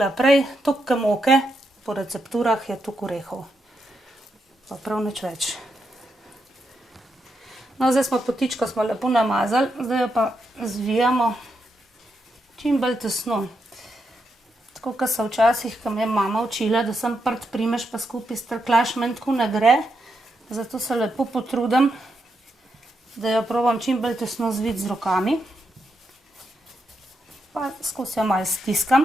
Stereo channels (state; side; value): normal; both; correlation 0.83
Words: prej, toliko moke po recepturah je toliko orehov. Pa prav nič več. No, zdaj smo potičko lepo namazali, zdaj jo pa zvijamo čim bolj tesno. Tako kot so včasih, ko me je mama učila, da sem prt primeš pa skupaj strklaš, meni tako ne gre. Zato se lepo potrudim, da jo probam čim bolj tesno zviti z rokami. Pa skozi jo malo